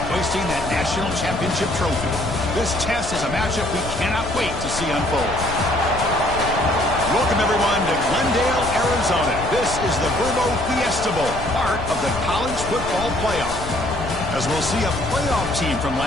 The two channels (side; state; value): left; noise; rumble, 9 dB below the sound